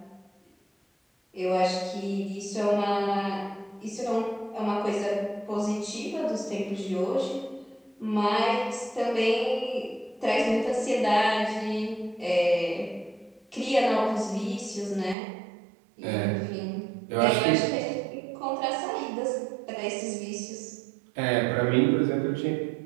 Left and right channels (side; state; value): left; drops out; at 15.2 s